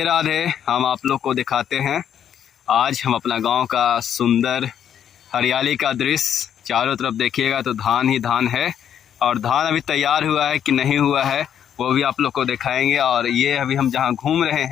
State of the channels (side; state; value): right; quieter; 9.2 dB